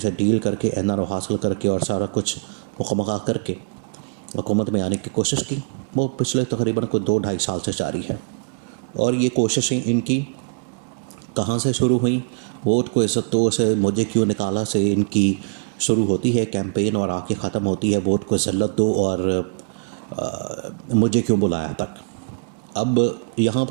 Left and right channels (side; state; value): left; quieter; 34.7 dB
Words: डील करके एनआरओ हासिल करके और सारा कुछ मुकम्मल करके हुकूमत में आने की कोशिश की, वो पिछले तकरीबन को 2-2.5 साल से जारी है। और ये कोशिशें इनकी कहाँ से शुरू हुई? वोट को इज़्ज़त से मुझे क्यों निकाला से इनकी शुरू होती है कैंपेन और आके ख़त्म होती है वोट को ज़िल्लत दो और मुझे क्यों बुलाया तक। अब यहाँ